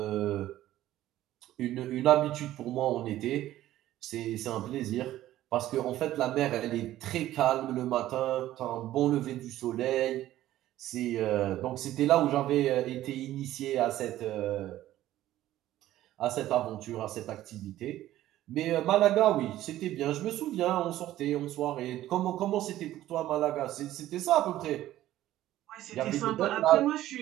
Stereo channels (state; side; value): quieter; left; 14.1 dB